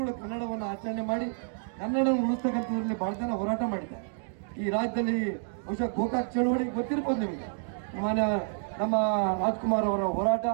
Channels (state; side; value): silent; left; digital silence